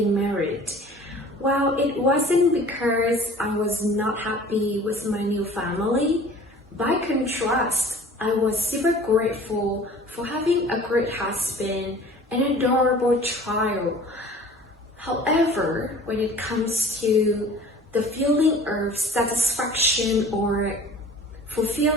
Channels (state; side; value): normal; both; correlation 0.46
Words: married. Well, it wasn't because I was not happy with my new family. By contrast, I was super grateful for having a great husband and an adorable child. However, when it comes to the feeling of satisfaction or